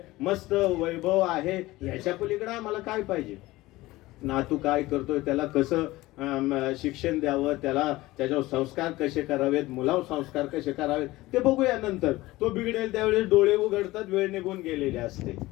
मस्त वैभव आहे. ह्याच्या पलीकडे आम्हाला काय पाहिजे? नातू काय करतोय, त्याला कसं शिक्षण द्यावं, त्याला त्याच्यावर संस्कार कसे करावेत, मुलावर संस्कार कसे करावेत ते बघूया नंतर. तो बिघडेल त्यावेळेस डोळे उघडतात, वेळ निघून गेलेले असते.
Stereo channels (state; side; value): quieter; right; 18.7 dB